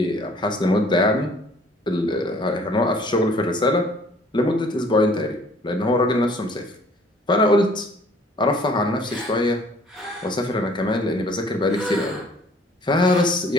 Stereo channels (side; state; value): both; normal; correlation 0.56